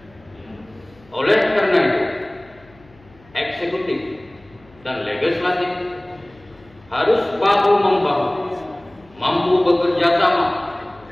Oleh karena itu, eksekutif dan legislatif harus bahu-membahu, mampu bekerja sama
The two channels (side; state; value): left; noise; hum, 27 dB below the sound